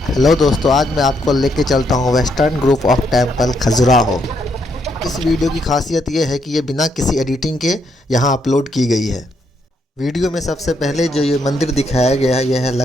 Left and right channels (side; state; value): both; normal; correlation 0.75